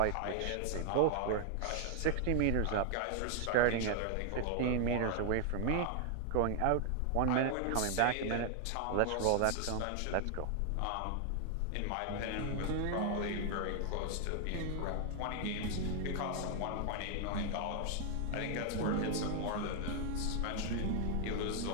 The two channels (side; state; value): both; different; correlation 0.00